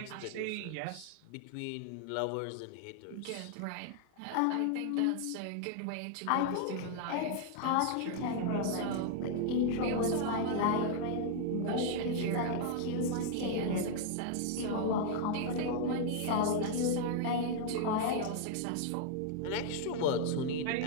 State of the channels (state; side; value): different; both; correlation 0.00